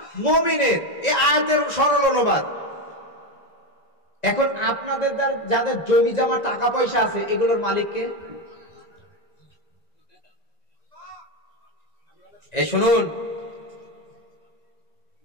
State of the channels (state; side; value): late; right; 1.9 ms